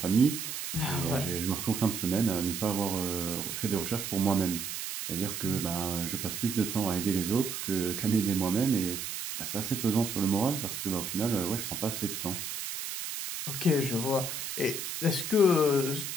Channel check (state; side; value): noise; right; hiss, 5 dB below the sound